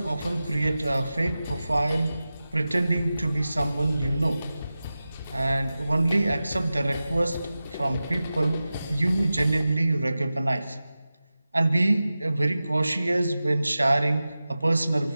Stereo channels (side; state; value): both; inverted; correlation -0.95